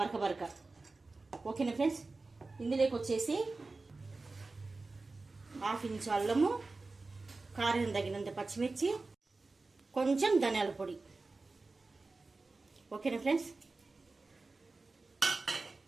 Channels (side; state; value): left; quieter; 3.6 dB